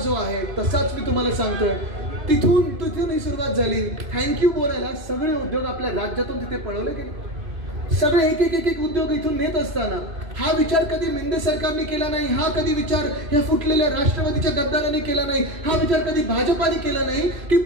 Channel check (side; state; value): left; late; 2.6 ms